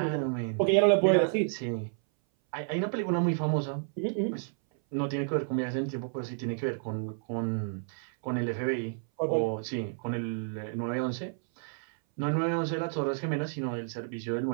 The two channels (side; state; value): left; silent; 58 dB below the other